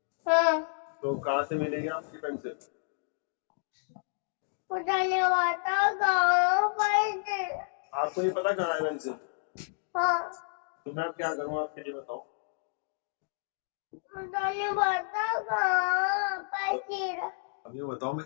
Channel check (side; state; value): right; silent; digital silence